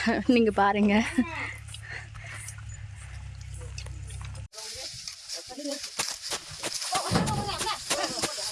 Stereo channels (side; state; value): both; identical; correlation 1.00